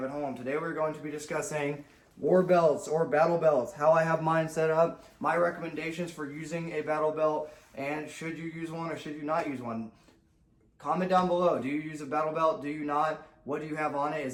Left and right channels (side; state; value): both; identical; correlation 1.00